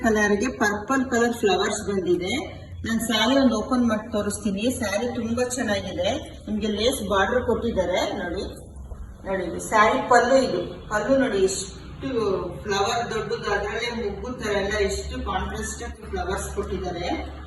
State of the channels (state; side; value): identical; both; correlation 1.00